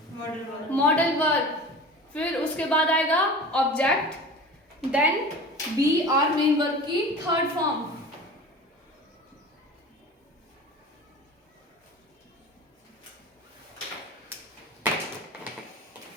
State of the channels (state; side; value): normal; both; correlation 0.37